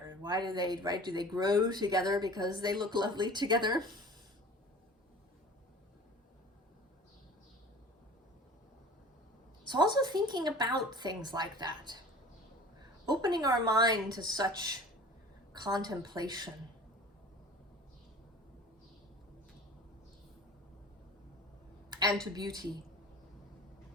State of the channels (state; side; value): normal; both; correlation 0.42